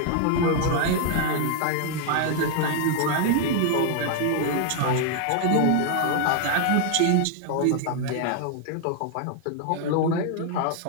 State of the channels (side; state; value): both; different; correlation 0.00